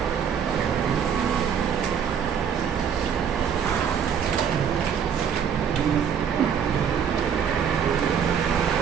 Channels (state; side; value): quieter; left; 7.7 dB